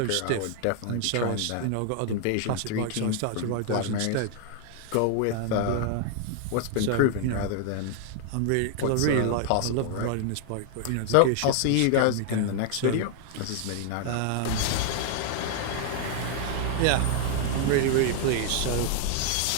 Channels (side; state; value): both; different; correlation 0.00